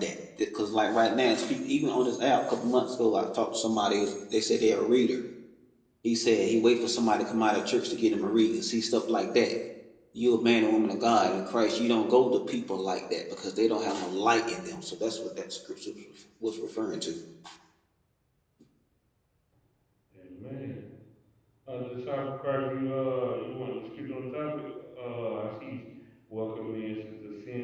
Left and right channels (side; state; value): both; identical; correlation 1.00